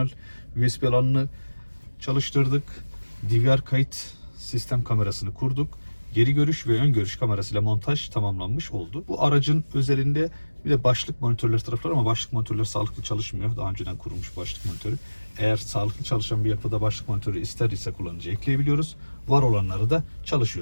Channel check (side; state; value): both; inverted; correlation -1.00